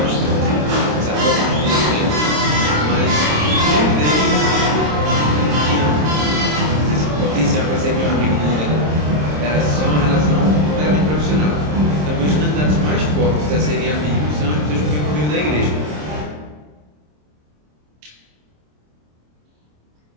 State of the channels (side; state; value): left; late; 26 ms